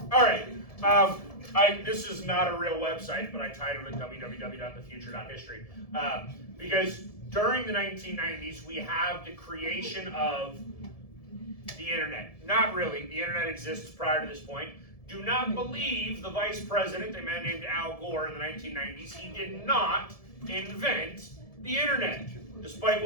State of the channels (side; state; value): right; late; 1.7 ms